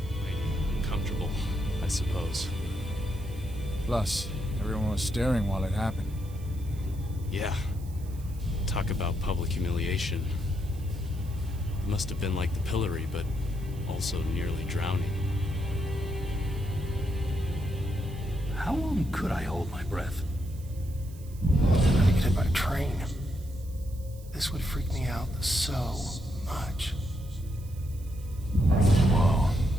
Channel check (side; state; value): right; noise; hiss, 23 dB below the sound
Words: Uncomfortable, I suppose. Plus, everyone was staring while it happened. Yeah. Talk about public humiliation. It must have been like the pillory, but also nearly drowning. How long could I hold my breath? I'm gonna get hit by a train. This would freak me out so much. Whoa.